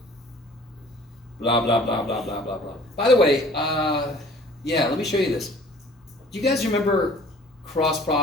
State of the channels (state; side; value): normal; both; correlation 0.51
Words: Blah, blah, blah, blah, blah, blah, blah. By the way, yeah, let me show you this. Do you guys remember cross